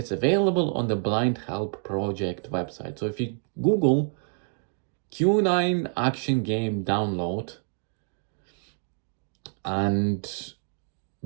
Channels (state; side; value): silent; left; 60 dB below the other